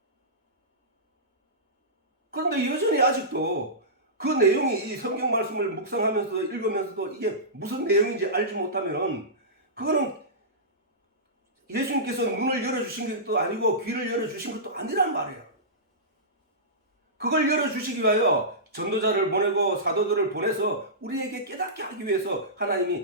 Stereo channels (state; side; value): normal; both; correlation -0.19